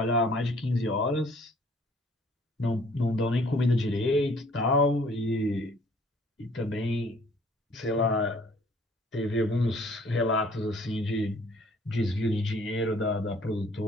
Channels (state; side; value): normal; both; correlation 0.58